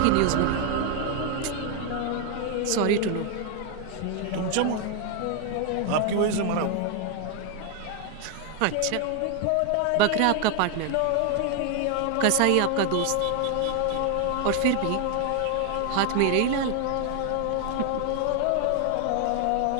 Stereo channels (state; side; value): different; both; correlation 0.00